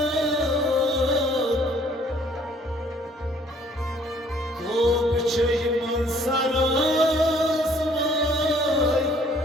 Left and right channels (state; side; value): normal; both; correlation 0.59